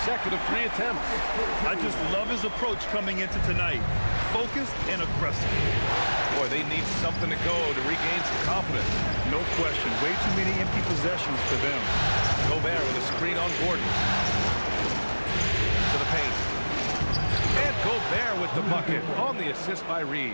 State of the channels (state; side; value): inverted; both; correlation -1.00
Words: second of 3 attempts. I just love his approach coming into tonight. Focused and aggressive. Boy, they need something to go to regain some confidence. No question. Way too many empty possessions for them. Gobert with a screen on Gordon. To the paint. And Gobert with the bucket on the assist by